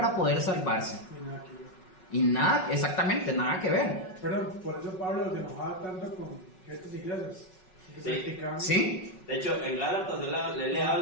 poder salvarse. Y nada, exactamente, nada que ver. Pero por eso Pablo se enojaba tanto con estas iglesias. Sí. De hecho, en Gálatas él le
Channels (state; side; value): late; right; 5.4 ms